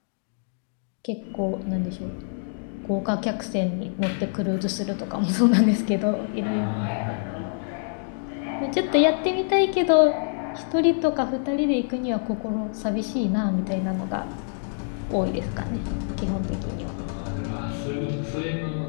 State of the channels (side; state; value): right; silent; digital silence